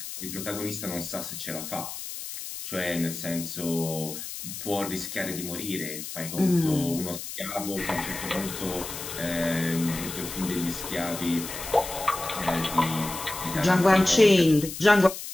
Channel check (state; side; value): noise; left; hiss, 8 dB below the sound